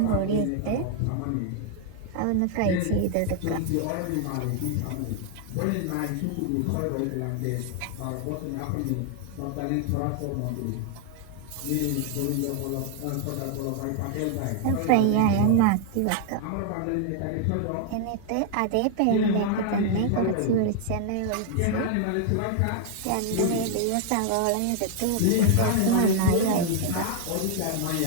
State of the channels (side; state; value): both; different; correlation 0.00